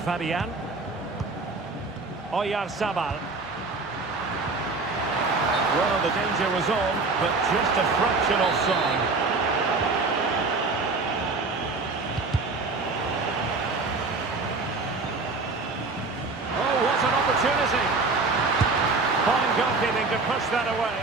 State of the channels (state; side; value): quieter; left; 3.8 dB